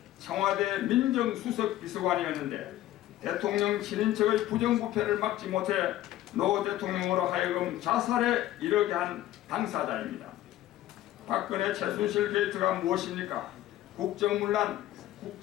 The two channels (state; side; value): quieter; right; 14.2 dB